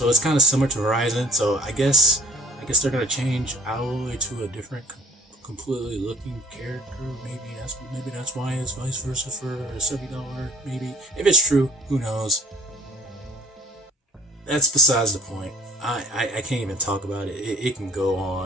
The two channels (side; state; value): both; normal; correlation 0.54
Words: it's kind of similar to Horizon. So I guess they're gonna change Aloy to a different, completely looking character. Maybe that's why it's vice versa for a $70. Maybe if it's true, who knows? That's besides the point. I can't even talk about it. It can go